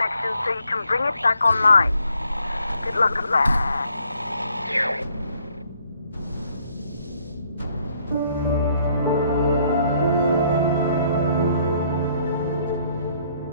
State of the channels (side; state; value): both; inverted; correlation -0.67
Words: so you can bring it back online. Good luck with that.